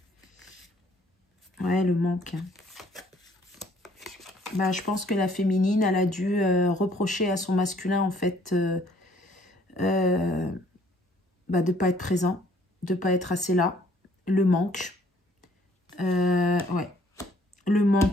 Ouais, le manque. Bah, je pense que la féminine, elle a dû reprocher à son masculin, en fait, bah, de ne pas être présent, de ne pas être assez là. Le manque. Ouais. Le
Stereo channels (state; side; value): normal; both; correlation 0.61